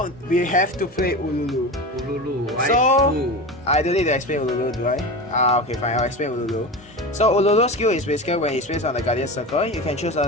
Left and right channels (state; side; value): normal; both; correlation 0.27